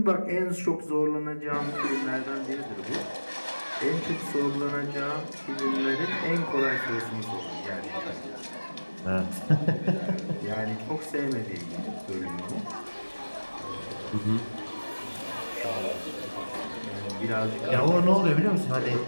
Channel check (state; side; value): inverted; both; correlation -1.00